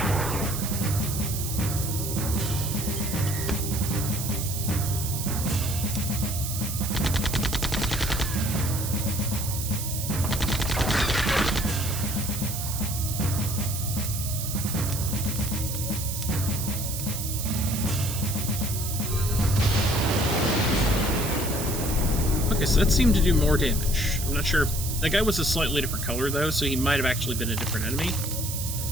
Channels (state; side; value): noise; right; hiss, 5 dB below the sound